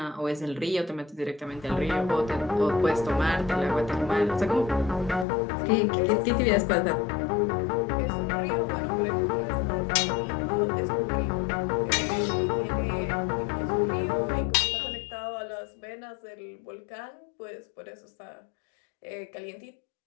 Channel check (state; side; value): drops out; right; at 5.2 s